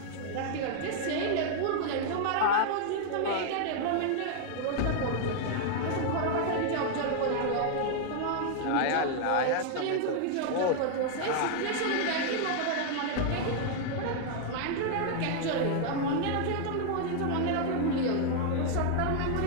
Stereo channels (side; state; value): both; different; correlation 0.00